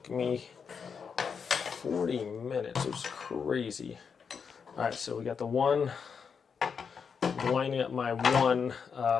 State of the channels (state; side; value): quieter; right; 6.2 dB